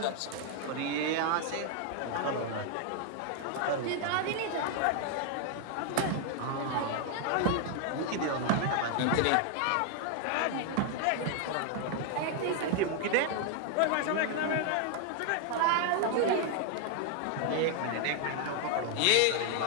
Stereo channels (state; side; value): different; both; correlation 0.00